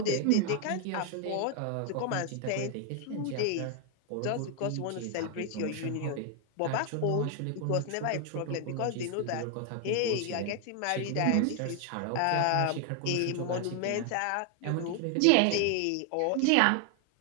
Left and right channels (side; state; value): both; different; correlation 0.00